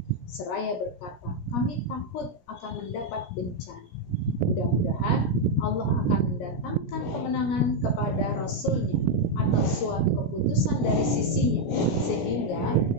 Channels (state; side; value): late; right; 17 ms